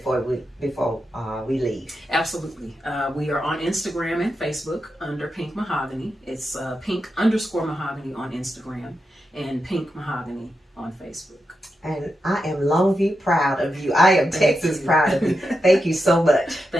we leave? Absolutely. We are on Instagram and Facebook under Pink MahogHany. It's Pink_Mahogany on Instagram and Pink MahogHany on Facebook. And I am Longview proud of you. I am Texas proud of you. Thank you so much.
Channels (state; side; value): normal; both; correlation 0.87